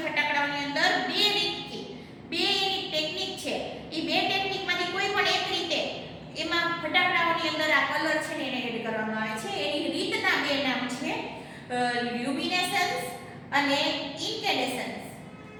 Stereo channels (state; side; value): identical; both; correlation 1.00